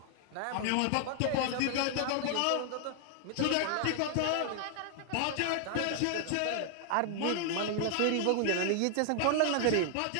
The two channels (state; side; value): different; both; correlation 0.00